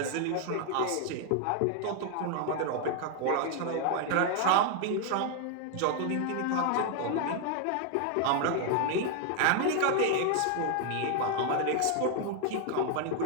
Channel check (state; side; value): different; both; correlation 0.00